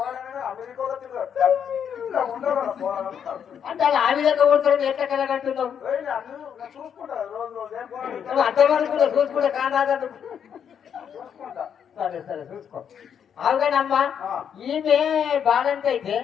అమెరికాలో తిరుగుతాడు ఉండవు పోరాడు. అంటే అలా ఆ విధంగా కొడుతాడు, ఎట్లా కలగంటున్నావు? లేని అన్ని నేను చూసుకుంటా రోజు ఏం పోరాడు నువ్వు అంతవరకు చూసుకుంటే కానాదు. చూసుకుంటా. సరే సరే చూసుకో. అవుగానమ్మా, ఆ. ఈమె బాలంటే అయితే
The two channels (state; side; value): quieter; right; 8.1 dB